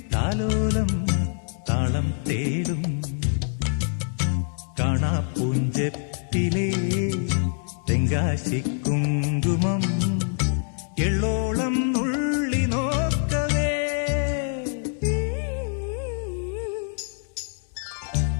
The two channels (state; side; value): silent; right; 62 dB below the other